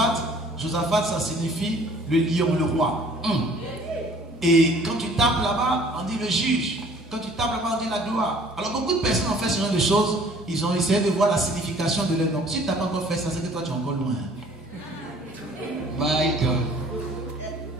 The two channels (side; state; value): both; normal; correlation 0.53